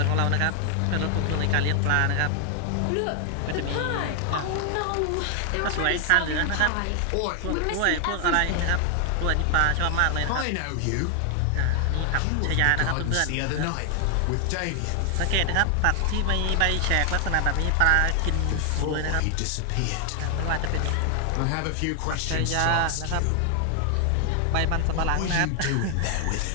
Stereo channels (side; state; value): both; different; correlation 0.00